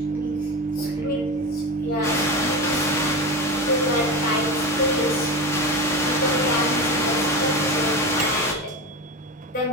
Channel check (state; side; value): normal; both; correlation 0.23